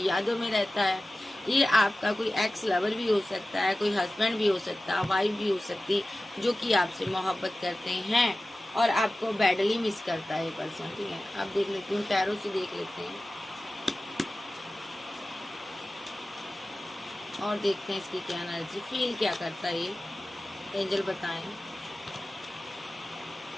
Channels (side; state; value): both; normal; correlation 0.96